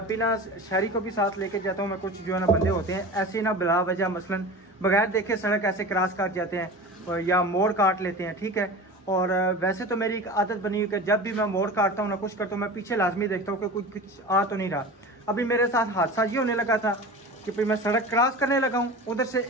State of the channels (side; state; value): both; normal; correlation 0.33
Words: भी ना शहरी को भी साथ लेके जाता हूँ, मैं कुछ जो है ना बंदे होते हैं ऐसे ना बिला वजह मसलन बगैर देखे सड़क ऐसे क्रॉस काट जाते हैं या मोड़ काट लेते हैं, ठीक है। और वैसे तो मेरी एक आदत बनी हुई कि जब भी मैं मोड़ काटता हूँ ना कुछ करता हूँ, मैं पीछे लाजमी देखता हूँ कि कुछ आ तो नहीं रहा। अभी मेरे साथ हादसा ये होने लगा था कि फिर मैं सड़क क्रॉस करने लगा हूँ, उधर से